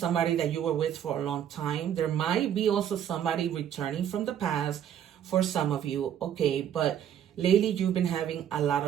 that you were with for a long time. There might be also somebody returning from the past for some of you, okay, but lately you've been having a lot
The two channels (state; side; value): quieter; left; 9.7 dB